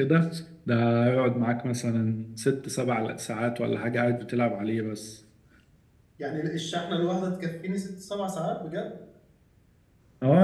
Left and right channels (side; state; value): both; identical; correlation 1.00